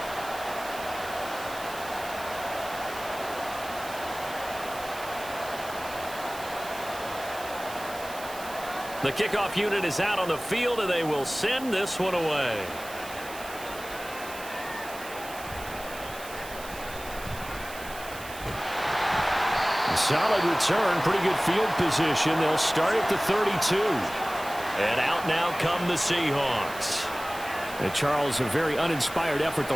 The kickoff unit is out on the field, and they will send this one away. Solid return, pretty good field position. They'll start at the 32. And out now come the Seahawks. And Charles, a very uninspired effort.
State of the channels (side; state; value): right; noise; hiss, 14 dB below the sound